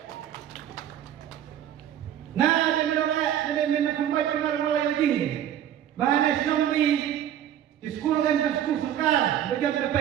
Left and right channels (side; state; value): left; quieter; 10.7 dB